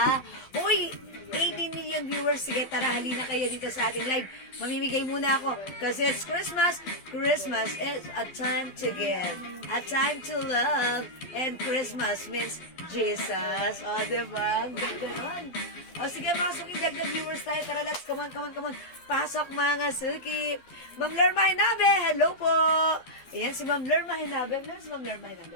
Uy, 18 million viewers. Sige, tara, halina kayo dito sa ating live. Mamimigay muna ako. Kasi it's Christmas. Christmas is a time to give. A time to love. And Christmas means Jesus. O, diba? Ang ganda nun. O, sige, mga suki, dagdag viewers tayo. Tara, let's, come on. Pasok, mga suki. Ma'am Lerma Hinabe, hello po. Ayan, si Ma'am Lerma Hinabe. Meron si Ma'am Lerma Hinabe?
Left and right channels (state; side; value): late; right; 12 ms